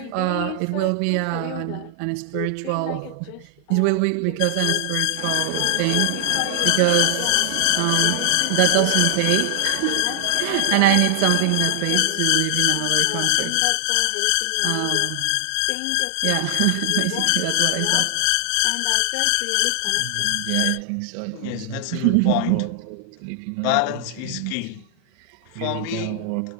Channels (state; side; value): different; both; correlation 0.00